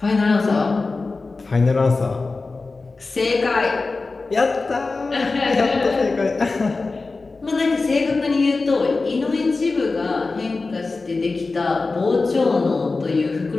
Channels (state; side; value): quieter; right; 3.8 dB